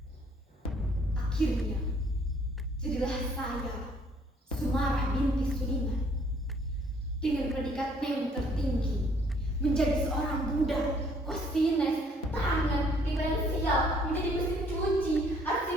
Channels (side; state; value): both; normal; correlation 0.62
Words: Akhirnya, jadilah saya, Sumarah binti Suliman, dengan predikat NEM tertinggi, menjadi seorang budak, kosines, tangan, diferensial, menjadi mesin cuci,